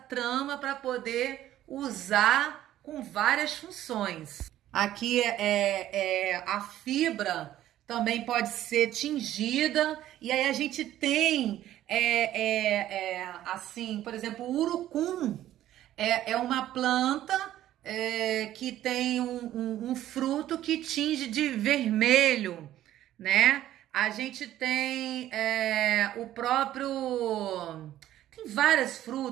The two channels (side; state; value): left; quieter; 13.0 dB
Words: para poder usar com várias funções. Aqui a fibra também pode ser tingida, e aí a gente tem assim, por exemplo, o urucum é uma planta que tem um fruto que tinge de vermelho, né? A gente tem o próprio... Tem várias